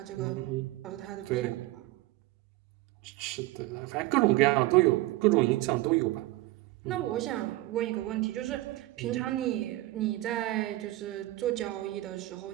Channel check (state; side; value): quieter; left; 18.2 dB